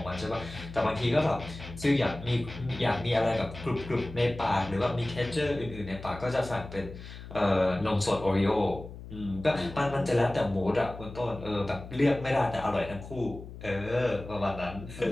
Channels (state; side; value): noise; left; hum, 13 dB below the sound